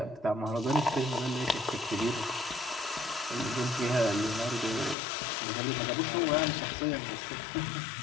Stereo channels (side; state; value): right; drops out; at 5.0 s